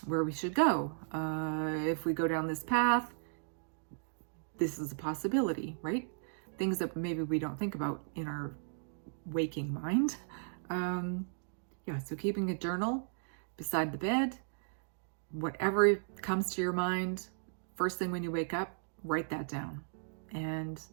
where we should go. If we go down this path, this is a possibility, right? Things that maybe we don't think about in our waking mind. So keeping a journal beside the bed, whatever comes to your mind, first thing when you wake up, write that down. And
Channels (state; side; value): silent; left; digital silence